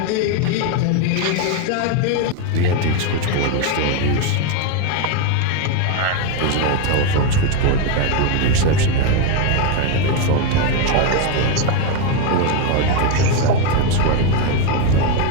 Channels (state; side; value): different; both; correlation 0.02